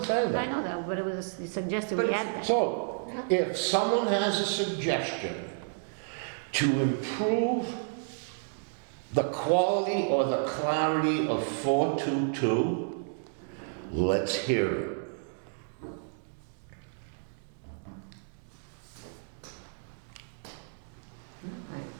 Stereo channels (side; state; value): left; silent; digital silence